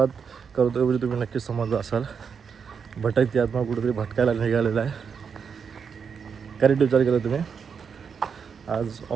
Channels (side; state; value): left; quieter; 6.4 dB